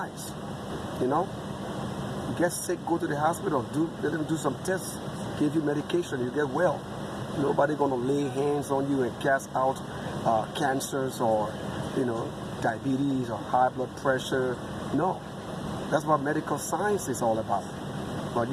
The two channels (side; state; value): both; identical; correlation 1.00